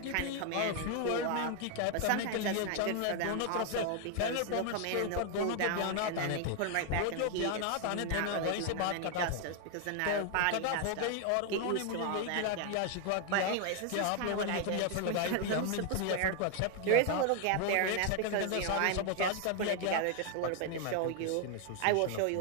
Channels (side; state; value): both; different; correlation 0.00